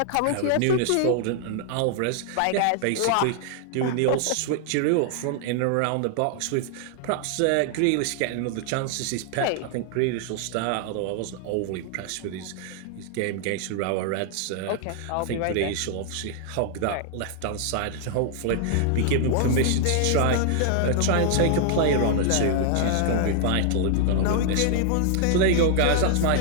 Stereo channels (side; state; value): both; different; correlation -0.01